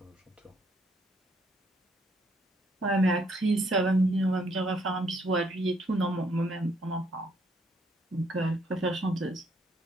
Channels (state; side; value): normal; both; correlation 0.69